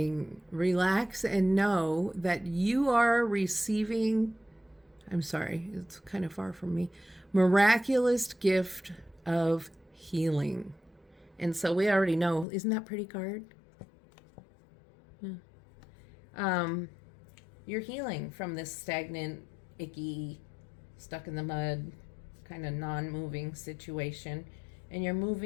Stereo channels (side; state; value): right; drops out; at 12.5 s